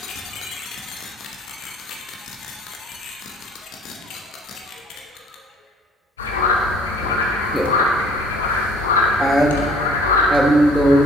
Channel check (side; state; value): both; normal; correlation 0.54